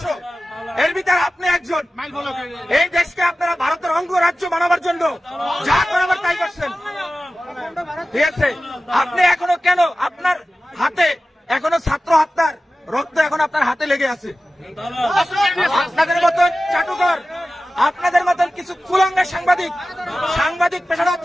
এর ভিতরে আপনি একজন। এই দেশকে আপনারা ভারতের অঙ্গরাজ্য বানাবার জন্য যা করাবার তাই করছেন, ঠিক আছে? আপনি এখনো কেন আপনার হাতে এখনো ছাত্র হত্যার রক্ত এখন আপনার হাতে লেগে আছে? আপনাদের মতন চাটুকর, আপনাদের মতন কিছু কুলাঙ্গা সাংবাদিক পেশাটা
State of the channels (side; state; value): both; normal; correlation 0.95